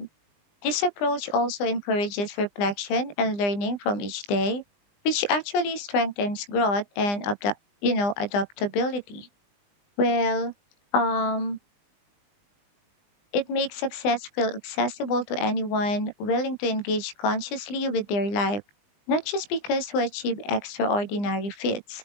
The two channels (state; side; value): late; right; 20 ms